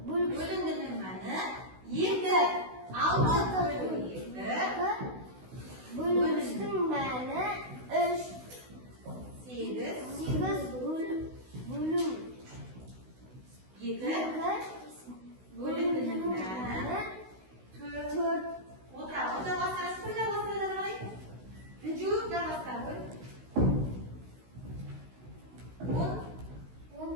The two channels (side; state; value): left; late; 16 ms